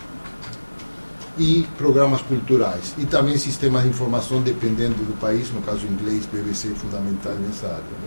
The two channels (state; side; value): inverted; both; correlation -1.00